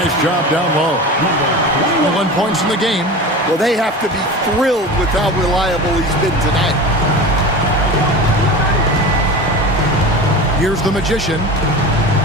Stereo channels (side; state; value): both; normal; correlation 0.31